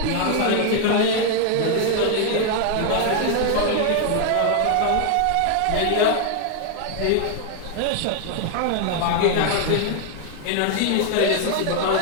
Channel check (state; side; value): different; both; correlation 0.00